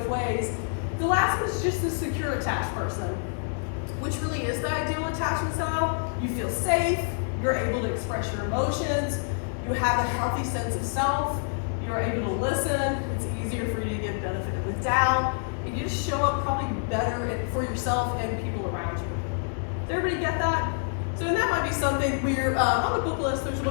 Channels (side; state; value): right; silent; digital silence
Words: ways. The last one is just the secure attached person, which really is the ideal attachment style. You feel safe, you're able to express your emotions, you have a healthy sense of self, you're able to listen, it's easier for you to give benefit of the doubt, and you just show up probably better for yourself and people around you. Does everybody get that? So that might be something we're, on the book list, there's a